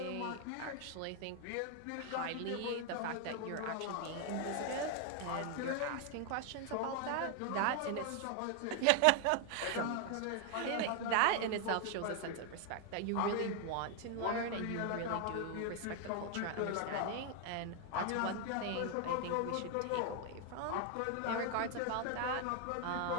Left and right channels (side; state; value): both; different; correlation 0.00